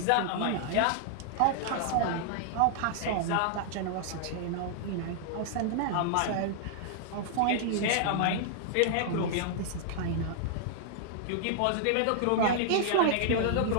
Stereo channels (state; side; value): different; both; correlation -0.01